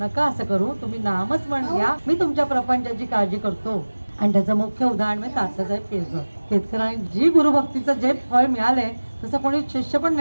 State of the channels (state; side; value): inverted; both; correlation -1.00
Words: नका असं करू, तुम्ही नामच म्हण घ्या, मी तुमच्या प्रपंचाची काळजी करतो. आणि त्याचं मुख्य उदाहरण म्हणजे तात्यासाहेब केळकर. केतकरांनी जी गुरुभक्तीचं जे फळ मिळालंय तसं कोणी शिष्य पण